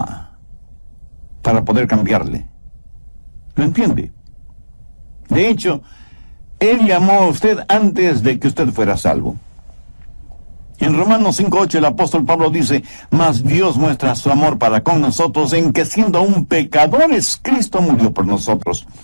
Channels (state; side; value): inverted; both; correlation -1.00